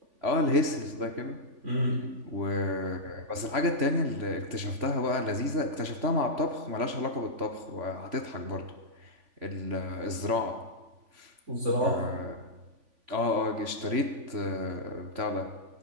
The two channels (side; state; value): left; late; 3.5 ms